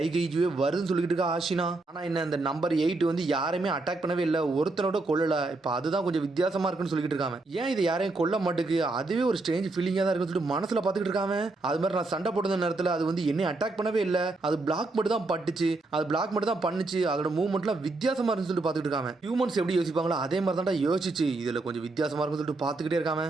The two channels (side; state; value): left; quieter; 3.2 dB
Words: கைஜுவே வருதுன்னு சொல்லிக்கிட்டு இருக்கா ஆஷினா. ஆனா என்ன இந்த நம்பர் 8 வந்து யாரையுமே அட்டாக் பண்ணவே இல்லை, ஒருத்தனோட கொல்லல. இப்ப அதுதான் கொஞ்சம் வித்தியாசமா இருக்குன்னு சொல்லிக்கிட்டு இருக்காங்க. ஏன் இது யாரையும் கொல்ல மாட்டுக்கு, அதுவே ஒரு ஸ்ட்ரேஞ்ச் ஃபீலிங்கா தான் இருக்குன்னு சொல்லிட்டு மனசுல பாத்துக்கிட்டு இருக்காங்க. அது மாதிரி நான் சண்டை போடுற நேரத்துல அது வந்து என்னை அட்டாக் பண்ணவே இல்லை, அது பிளாக் மட்டும் தான் பட்டுச்சு, அது பிளாக் மட்டும் தான் பண்ணுச்சு, அதோட மூவ்மெண்ட்லாம் வித்தியாசமா இருக்குன்னு சொல்லிட்டு பாத்துக்கிட்டு இருக்காங்க. ஹியூமன்ஸ் எப்படி யோசிப்பாங்களோ அதே மாதிரி தான் யோசிச்சு இதுல கொஞ்சம் வித்தியாசமா இருக்குன்னு சொல்லிட்டு பாத்துக்கிட்டே இருக்காங்க.